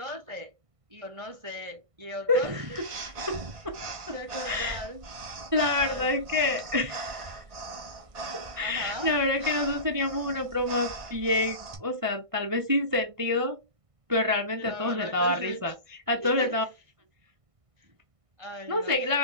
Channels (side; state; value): left; late; 1.5 ms